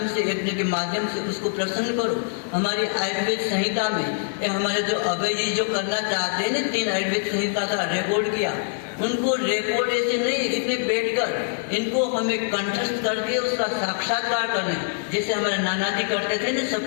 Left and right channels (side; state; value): right; silent; 62 dB below the other